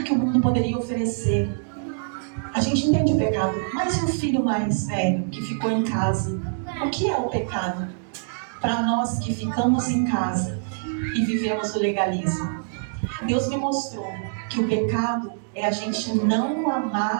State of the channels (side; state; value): left; silent; digital silence